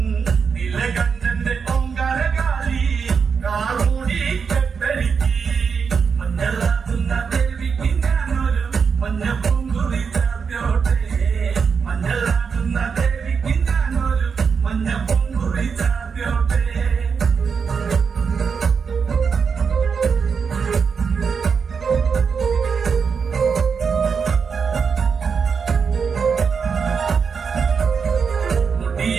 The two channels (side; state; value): left; quieter; 5.9 dB